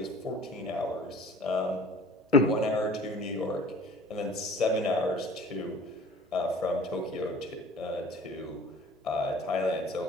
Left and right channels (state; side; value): normal; both; correlation 0.47